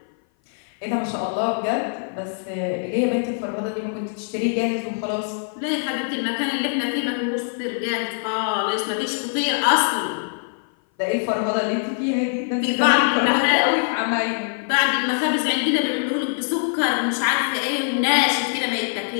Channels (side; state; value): right; silent; 57 dB below the other